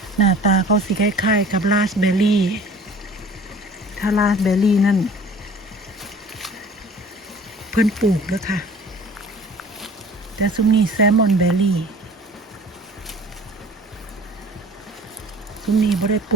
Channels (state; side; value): normal; both; correlation 0.46